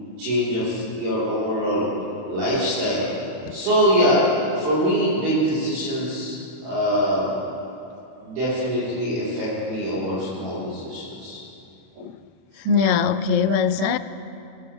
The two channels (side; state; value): left; late; 31 ms